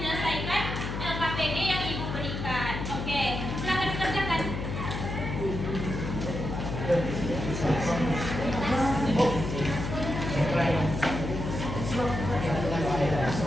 LKPD yang Ibu berikan. Oke, silakan dikerjakan.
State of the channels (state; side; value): noise; left; hum, 5 dB below the sound